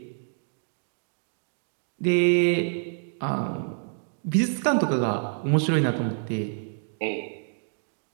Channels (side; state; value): left; silent; digital silence